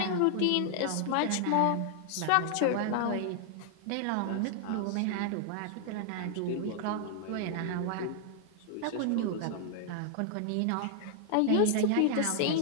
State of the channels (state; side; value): different; both; correlation 0.00